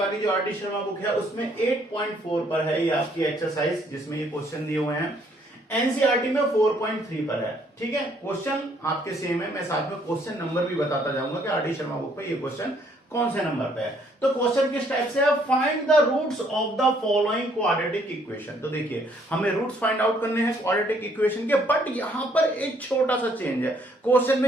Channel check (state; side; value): normal; both; correlation 0.66